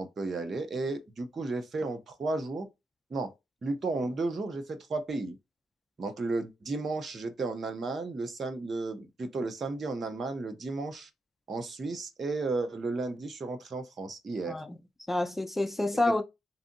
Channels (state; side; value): normal; both; correlation 0.85